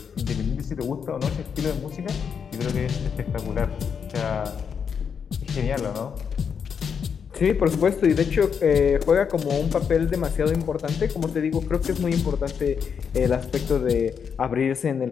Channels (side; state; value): right; quieter; 6.8 dB